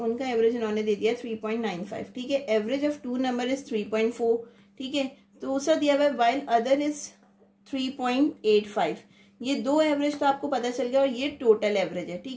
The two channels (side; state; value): both; identical; correlation 1.00